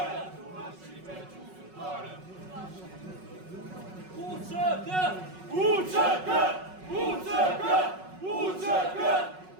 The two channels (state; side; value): late; left; 5.4 ms